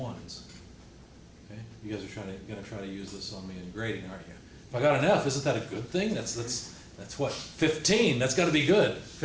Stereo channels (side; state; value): both; identical; correlation 1.00